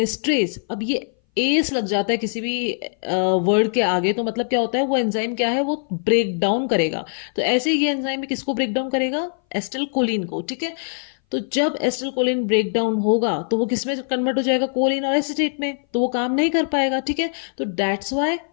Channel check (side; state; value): right; silent; 60 dB below the other